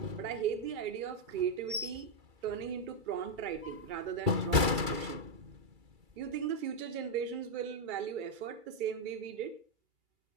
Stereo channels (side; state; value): left; late; 2.3 ms